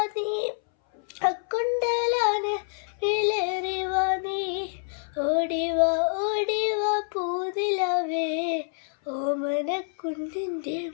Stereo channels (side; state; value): right; silent; 60 dB below the other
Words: നീ, അക്കുണ്ടലാണ് വിളറി വാ നീ. ഓടിവാ ഓടിവാ പൂനിലാവേ, ഓമനക്കുഞ്ഞിന്റെ